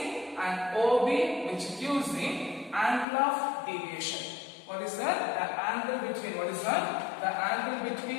and OB which gives the angle of deviation. What is that? The angle between, what is that? The angle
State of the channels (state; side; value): drops out; right; at 3.1 s